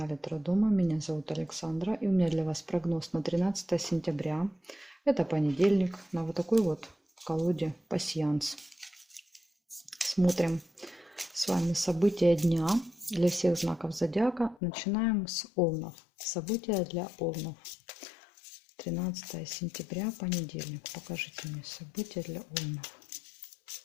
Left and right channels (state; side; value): drops out; right; at 14.6 s